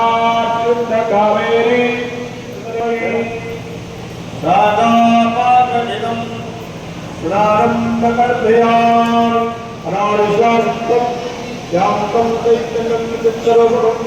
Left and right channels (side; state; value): both; identical; correlation 1.00